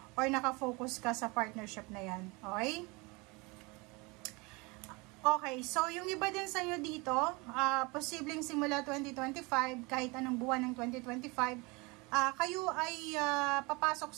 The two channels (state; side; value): quieter; left; 26.6 dB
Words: or nakafocus ka sa partnership na yan. Okay? Okay, so yung iba din sa inyo dito, posibleng simula 2025, kahit anong buwan ng 2025, kayo ay papasok